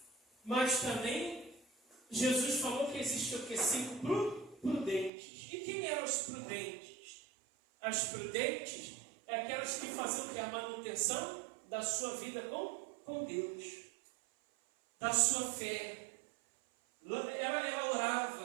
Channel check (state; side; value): drops out; left; at 5.1 s